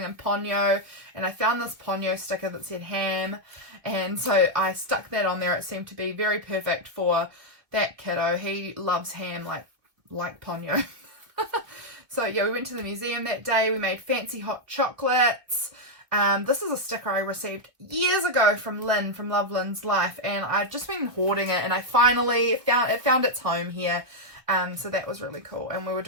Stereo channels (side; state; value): left; late; 2.2 ms